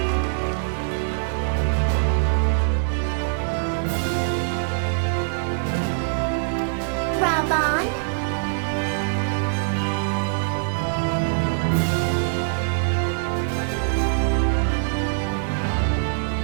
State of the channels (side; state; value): left; silent; 63 dB below the other